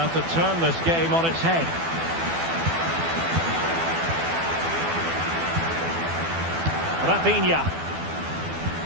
to turn this game on its head. Rafinha.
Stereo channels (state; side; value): late; left; 12 ms